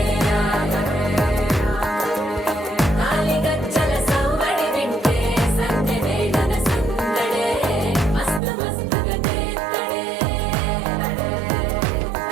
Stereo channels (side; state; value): left; drops out; at 8.4 s